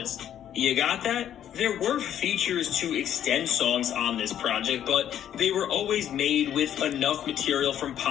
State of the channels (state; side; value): quieter; right; 10.4 dB